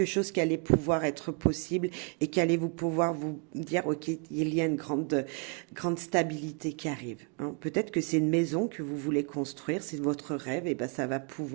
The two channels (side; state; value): left; quieter; 38.0 dB